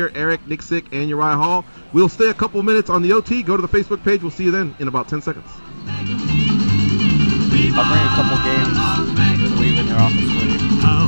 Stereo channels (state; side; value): inverted; both; correlation -1.00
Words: Eric Nicksick, and Uriah Hall. We'll stay a couple minutes on the OT. Go to the Facebook page. We'll see you then in about 10 seconds. I'll bring a couple games to leave in your office for you.